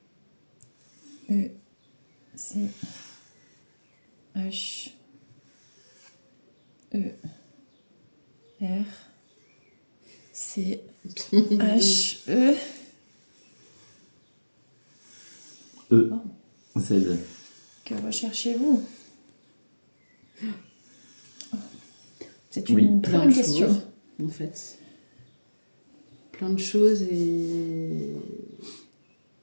E. C. H. E. R. C. H. E. E. Z. Que recherchez-vous? C'est Oui. une très Plein bonne de question. choses, en fait. Plein de choses et...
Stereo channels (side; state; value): both; inverted; correlation -1.00